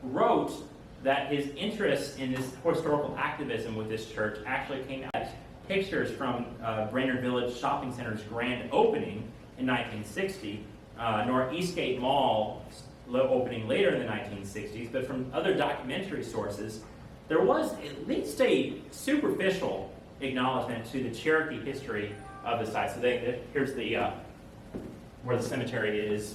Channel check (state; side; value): identical; both; correlation 1.00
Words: wrote that his interest in this historical activism with this church actually came out of pictures from Brainerd Village Shopping Center's grand opening in 1960, nor Eastgate Mall opening later in the 1960s, but from other documentary sources, there was at least a superficial acknowledgement to the Cherokee history of the site. So here's where the cemetery